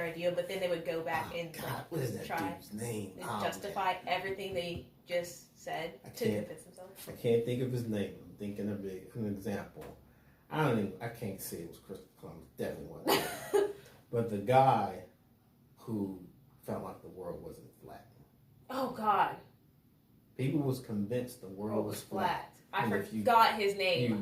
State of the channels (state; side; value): identical; both; correlation 1.00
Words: idea, but then they would go back what is that try dude's name? to justify everything they just said to convince themselves? I can't think of his name. I'm thinking of an example. I can't say it was Christopher Columbus. Definitely wasn't. But the guy who felt like the world wasn't flat. Oh God. People was convinced the world was flat. I forgot his